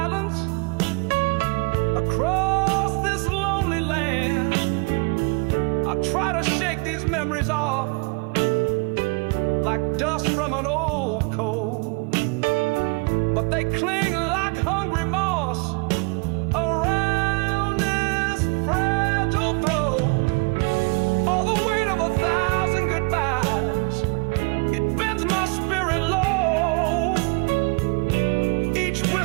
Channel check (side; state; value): left; quieter; 31.6 dB